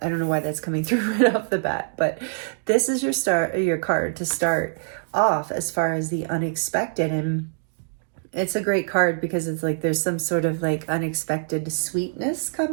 I don't know why that's coming through right off the bat, but this is your card to start off as far as the unexpected. And it's a great card because it's like there's some sort of like unexpected sweetness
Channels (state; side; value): silent; left; digital silence